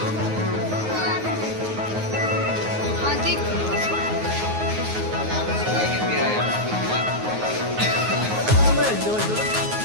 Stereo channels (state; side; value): late; left; 9.5 ms